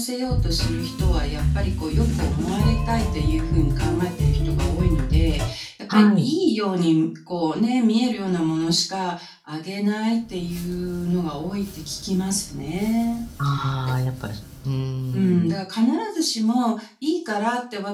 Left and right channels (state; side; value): identical; both; correlation 1.00